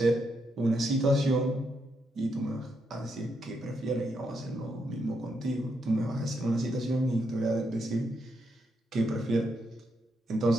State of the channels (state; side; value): normal; both; correlation 0.80